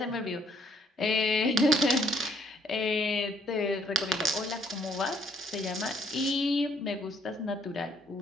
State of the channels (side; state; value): both; normal; correlation 0.66